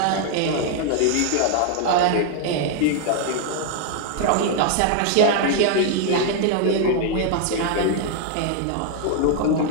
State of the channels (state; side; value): different; both; correlation 0.00